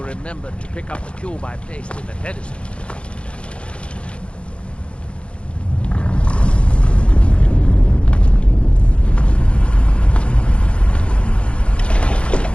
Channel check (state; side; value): late; right; 0.059 ms